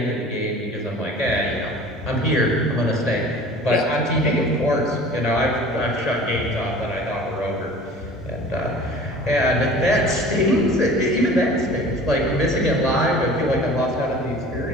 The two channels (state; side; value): normal; both; correlation 0.44